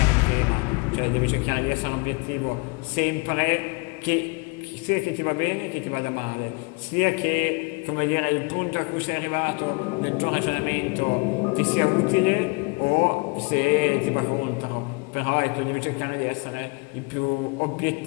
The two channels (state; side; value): quieter; right; 30.6 dB